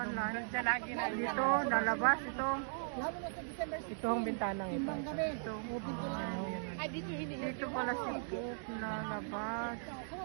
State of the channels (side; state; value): left; silent; digital silence